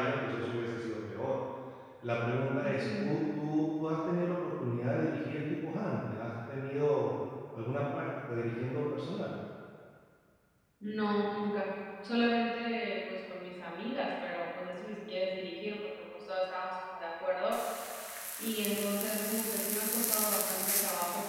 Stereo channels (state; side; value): identical; both; correlation 1.00